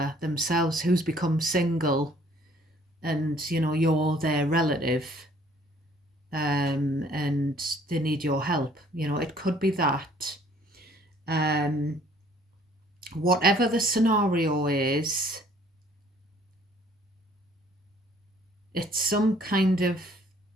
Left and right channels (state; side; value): normal; both; correlation 0.59